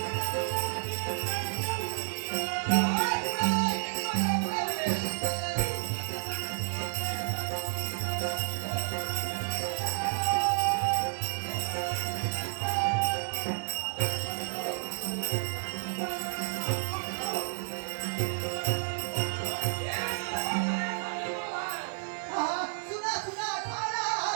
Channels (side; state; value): left; silent; digital silence